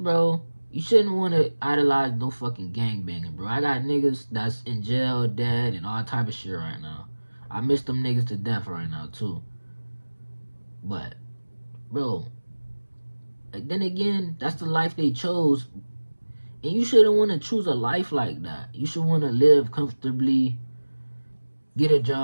you shouldn't want to idolize no fucking gangbanging, bro. I got niggas that's in jail, dead, and all type of shit right now. I miss them niggas to death right now, too. But, bro, like, then again, that's the life they chose. And you shouldn't want to choose a life like that. You should want to live comfortably, get a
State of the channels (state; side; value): inverted; both; correlation -1.00